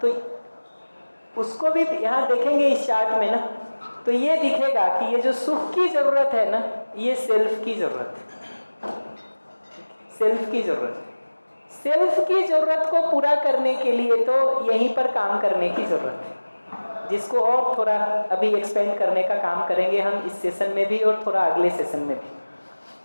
तो उसको भी यहाँ देखेंगे इस चार्ट में ना, तो ये दिखेगा कि ये जो सुख की जरूरत है ना, ये सेल्फ की जरूरत है। सेल्फ की जरूरत है। सेल्फ की जरूरत को पूरा करने के लिए तो यहीं पर काम करने की जरूरत है, जिसको और थोड़ा अभी एक्सपेंड करने का काम करेंगे हम इस सेशन में भी और थोड़ा अगले सेशन में भी।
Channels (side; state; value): both; inverted; correlation -1.00